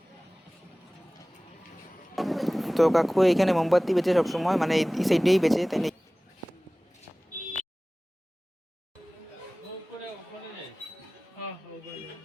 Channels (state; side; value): normal; both; correlation 0.98